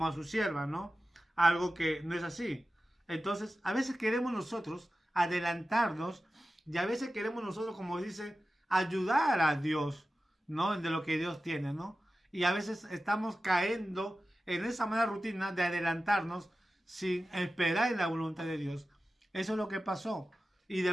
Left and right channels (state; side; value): normal; both; correlation 0.94